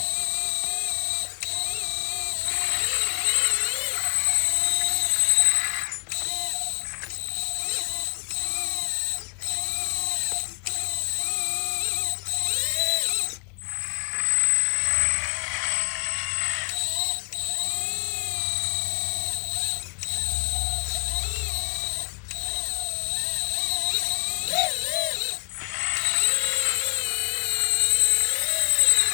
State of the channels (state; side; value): quieter; right; 35.7 dB